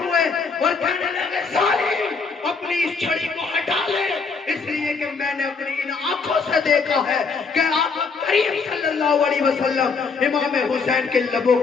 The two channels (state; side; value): quieter; right; 4.9 dB